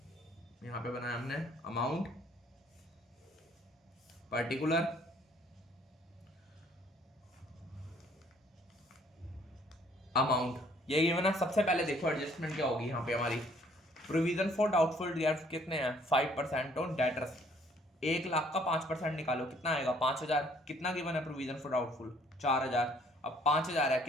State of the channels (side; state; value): both; normal; correlation 0.61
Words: यहां पे बनाया हमने अमाउंट, पर्टिकुलर, अमाउंट। ये गिवन है। सबसे पहले देखो एडजस्टमेंट क्या होगी यहाँ पे हमारी। प्रोविजन फॉर डाउटफुल डेट्स कितने हैं? 5% ऑन डेटर्स। 1 लाख का 5% निकालो, कितना आएगा? 5,000। कितना गिवन है प्रोविजन फॉर डाउटफुल? 4,000। अब 5,000 है,